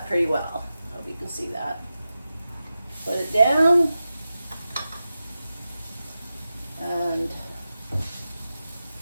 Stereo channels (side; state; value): both; inverted; correlation -0.93